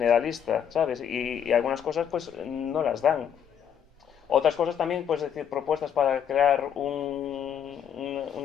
¿sabes? Y algunas cosas pues no las dan. Otras cosas también, pues decir, propuestas para crear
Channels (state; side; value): quieter; right; 8.6 dB